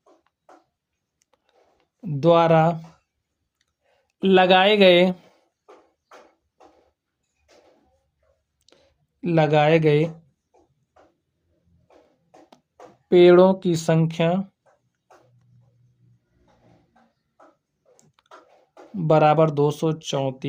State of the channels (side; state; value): both; identical; correlation 1.00